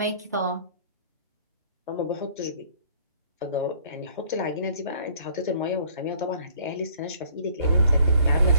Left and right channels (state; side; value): inverted; both; correlation -0.58